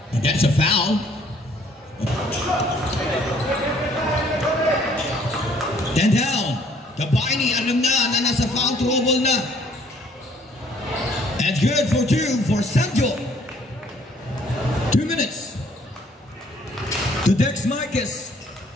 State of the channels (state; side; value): normal; both; correlation 0.61